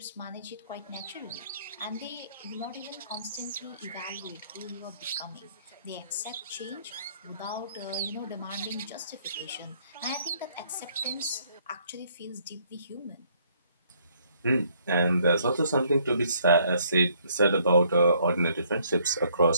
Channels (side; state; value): both; inverted; correlation -0.65